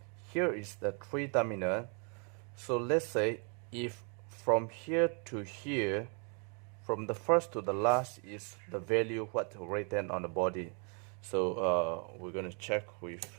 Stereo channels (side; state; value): left; quieter; 37.9 dB